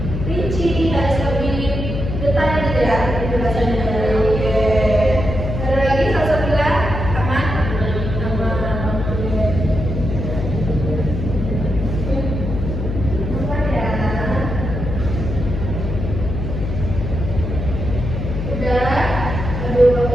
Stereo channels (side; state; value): left; noise; hum, 4 dB below the sound